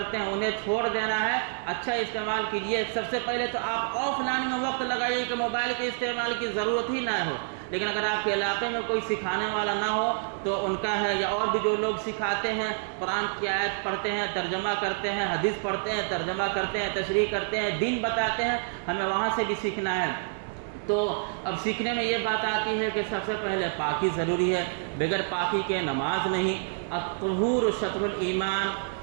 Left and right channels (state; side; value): silent; left; digital silence